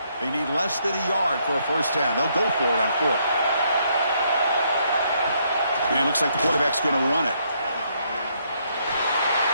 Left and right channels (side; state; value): both; inverted; correlation -0.72